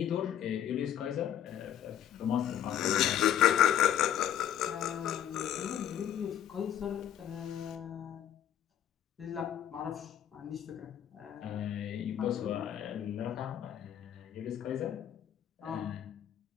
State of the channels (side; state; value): right; quieter; 10.5 dB